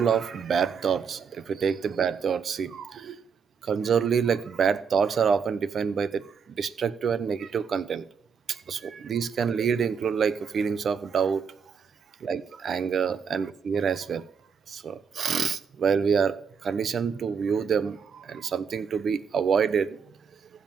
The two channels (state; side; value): quieter; left; 6.4 dB